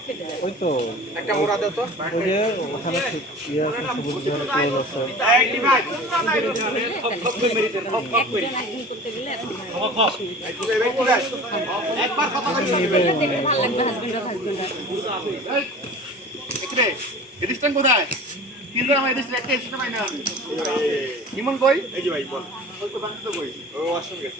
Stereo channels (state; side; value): normal; both; correlation 0.40